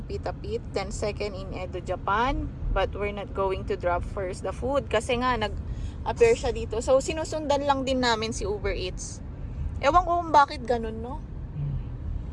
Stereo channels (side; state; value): both; identical; correlation 1.00